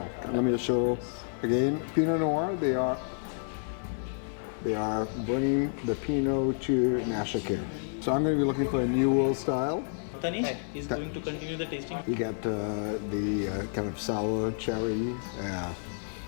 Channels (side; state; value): right; silent; digital silence